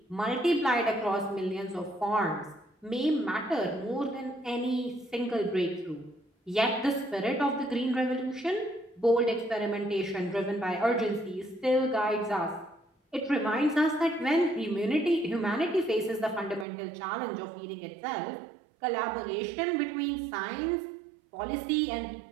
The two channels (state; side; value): drops out; left; at 16.7 s